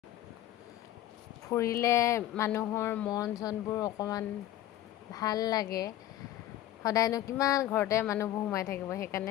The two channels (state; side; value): quieter; right; 13.3 dB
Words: ফুৰিলে মানুহৰ মন চনবোৰ অকণমান ভাল লাগে। সদায়নো কিমান ঘৰতে মানুহবোৰ সোমাই থাকিব,